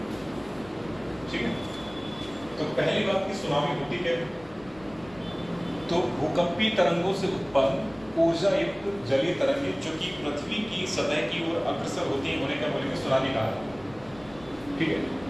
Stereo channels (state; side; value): noise; left; rumble, 21 dB below the sound